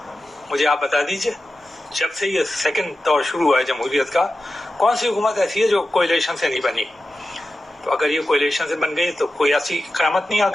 مجھے آپ بتا دیجئے. جب سے یہ سیکنڈ دور شروع ہوا ہے جمہوریت کا, کون سی حکومت ایسی ہے جو کوئلیشن سے نہیں بنی؟ تو اگر یہ کوئلیشن سے بن گئی تو کوئی ایسی قیامت نہیں آ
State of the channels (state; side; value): normal; both; correlation 0.92